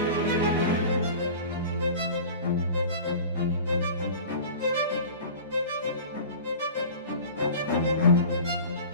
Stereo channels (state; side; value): inverted; both; correlation -0.38